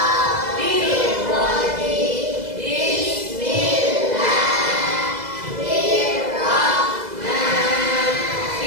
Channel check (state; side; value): late; left; 2.0 ms